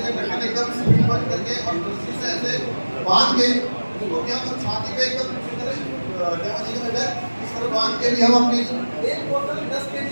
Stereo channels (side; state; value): both; inverted; correlation -1.00